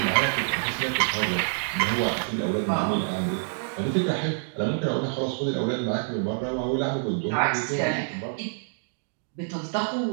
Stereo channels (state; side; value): silent; left; digital silence